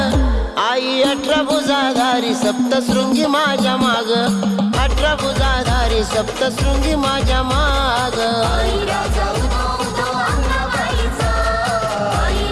आई 18 भुजाधारी सप्तशृंगी माझ्या माग 18 भुजाधारी सप्तशृंगी माझ्या माग आई राजा उदो उदो अंगबाईचा आई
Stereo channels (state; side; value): identical; both; correlation 1.00